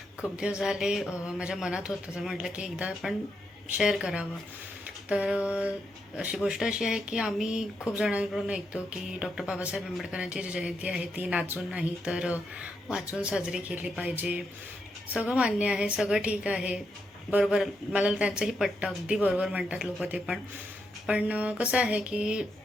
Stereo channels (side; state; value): both; normal; correlation 0.82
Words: खूप दिवस झाले माझ्या मनात होतं, तर म्हटलं की एकदा आपण शेअर करावं. तर अशी गोष्ट अशी आहे की आम्ही खूप जणांकडून ऐकतो की डॉक्टर बाबासाहेब आंबेडकरांची जी जयंती आहे ती नाचून नाही तर वाचून साजरी केली पाहिजे. सगळं मान्य आहे, सगळं ठीक आहे, बरोबर, मला त्यांचंही पटतं, अगदी बरोबर म्हणतात लोक ते पण. पण कसं आहे की